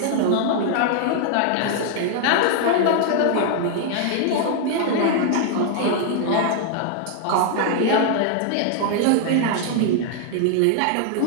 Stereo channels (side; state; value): both; different; correlation 0.00